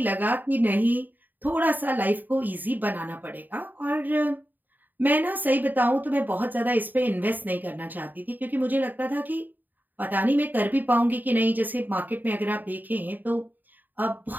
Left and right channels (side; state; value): left; late; 0.088 ms